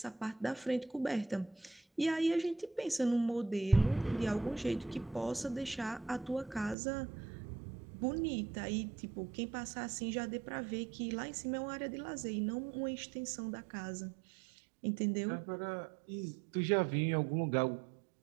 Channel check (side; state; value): left; drops out; at 6.8 s